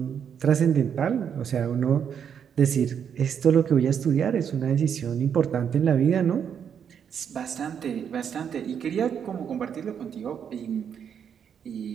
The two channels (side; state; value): left; quieter; 7.9 dB